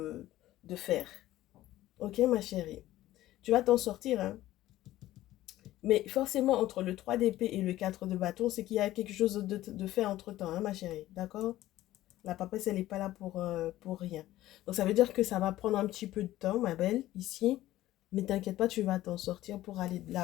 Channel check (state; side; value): quieter; right; 15.2 dB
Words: faire. OK, ma chérie? Tu vas t'en sortir, hein? Mais forcément, entre le 3 d'épée et le 4 de bâton, c'est qu'il y a quelque chose de fait entre-temps, hein, ma chérie. D'accord? La papesse, elle n'est pas là pour rien. Donc, ça veut dire que ça va prendre un petit peu de temps, ma belle, ici. Mais t'inquiète pas, tu vas t'en sortir pour aller de